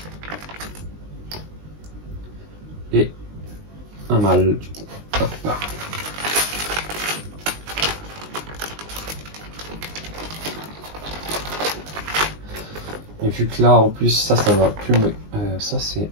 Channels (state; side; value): late; left; 19 ms